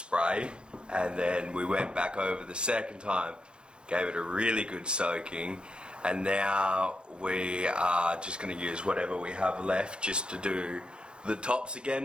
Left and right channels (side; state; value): left; late; 0.052 ms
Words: and then we went back over the second time, gave it a really good soaking, and now we are just going to use whatever we have left just to do the tops